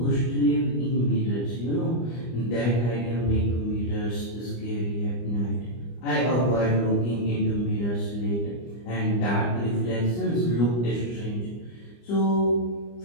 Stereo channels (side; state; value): right; late; 25 ms